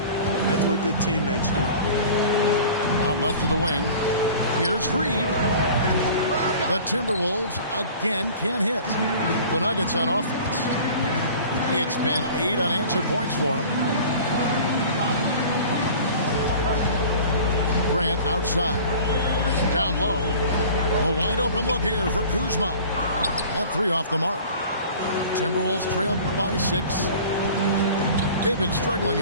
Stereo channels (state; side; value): inverted; both; correlation -0.43